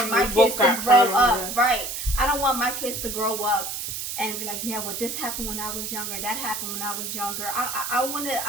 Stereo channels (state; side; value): noise; right; hiss, 5 dB below the sound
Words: my kids to grow up, right? I don't want my kids to grow up and be like, yeah, well, this happened when I was younger, that happened when I was younger. I